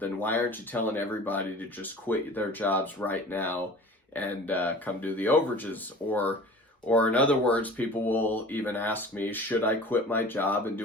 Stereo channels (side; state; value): both; normal; correlation 0.41